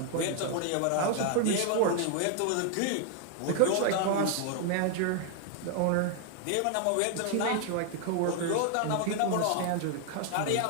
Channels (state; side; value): different; both; correlation 0.00